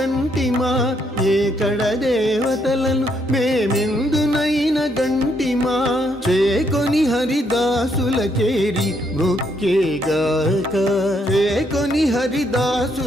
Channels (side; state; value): both; normal; correlation 0.74